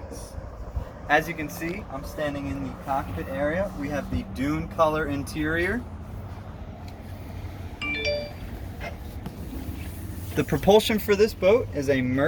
As you can see, I'm standing in the cockpit area. We have the dune color interior. The propulsion for this boat is a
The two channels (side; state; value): both; identical; correlation 1.00